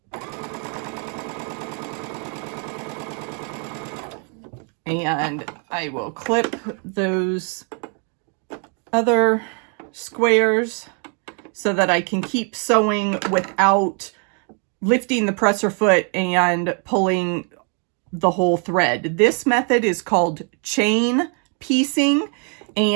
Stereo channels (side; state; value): left; quieter; 39.5 dB